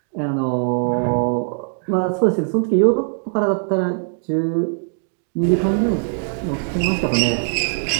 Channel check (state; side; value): silent; left; digital silence